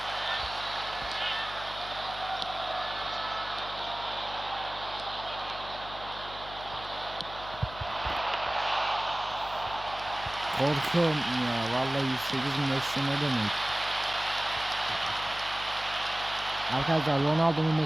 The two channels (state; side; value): noise; left; hum, 15 dB below the sound